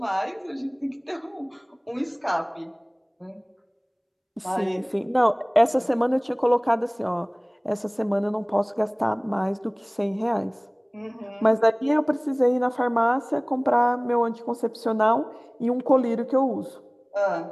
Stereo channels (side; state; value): both; identical; correlation 1.00